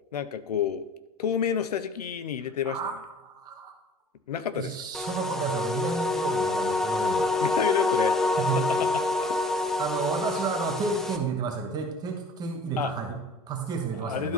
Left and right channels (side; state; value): both; normal; correlation 0.46